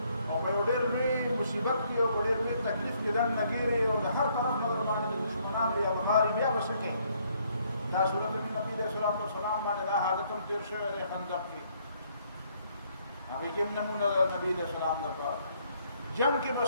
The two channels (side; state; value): both; inverted; correlation -0.68